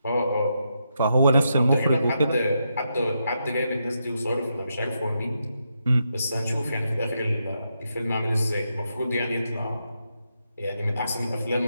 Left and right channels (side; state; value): both; inverted; correlation -0.83